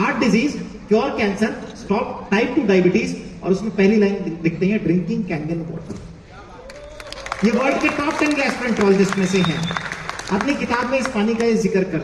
disease, cure cancer, stop type 2 diabetes, और उसमें पहली लाइन लिखते हैं ड्रिंकिंग कैंगन वाटर। ये वर्ल्ड के टॉप 10 गैस्ट्रोएंटरोलॉजिस्ट में से हैं। अपनी किताब में इस पानी का ये जिक्र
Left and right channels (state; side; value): identical; both; correlation 1.00